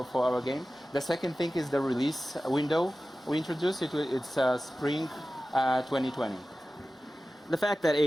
our game. The second thing is the release window. We introduced it. It's spring 2020. The fact that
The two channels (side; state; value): both; normal; correlation 0.95